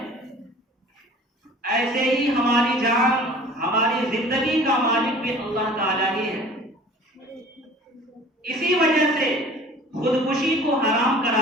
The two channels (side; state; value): both; normal; correlation 0.46